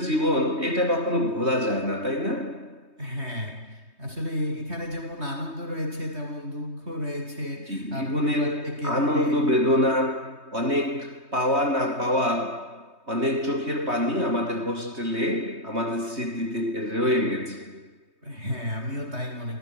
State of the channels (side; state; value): left; late; 3.2 ms